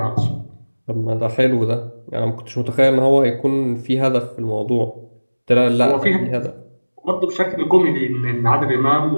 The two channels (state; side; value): inverted; both; correlation -1.00